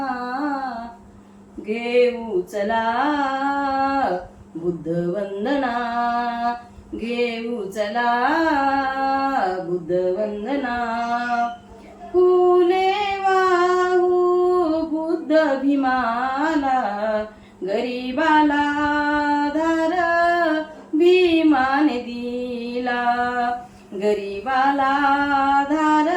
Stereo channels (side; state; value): both; identical; correlation 1.00